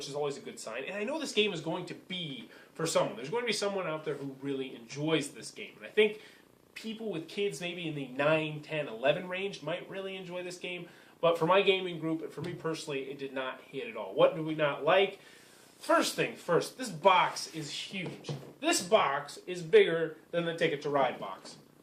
is always a good sign. And I know this game is going to be for someone. There's going to be someone out there who really enjoys this game, and I think people with kids maybe in the 9, 10, 11 range might really enjoy this game. But for my gaming group, and for me personally, it did not hit at all. What do we not like? First thing first, this box is huge. This box is bigger than the Ticket to Ride box.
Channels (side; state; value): both; identical; correlation 1.00